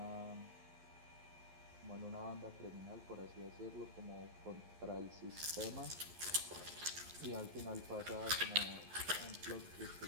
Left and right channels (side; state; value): left; late; 11 ms